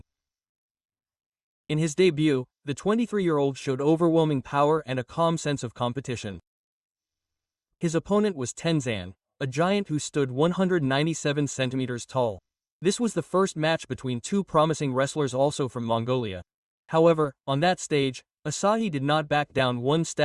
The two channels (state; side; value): identical; both; correlation 1.00